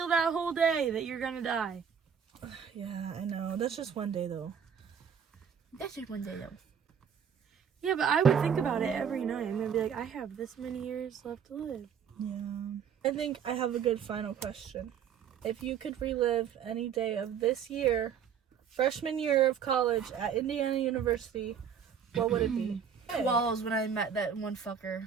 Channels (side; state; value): left; quieter; 7.6 dB